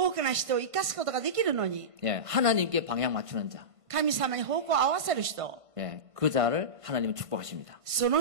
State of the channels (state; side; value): late; left; 1.5 ms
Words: くの人を生かすことができるのに。 예, 하나님께 방향 맞추는 자. 神様に方向を合わせる人。 예, 그 자를 하나님은 축복하십니다. そ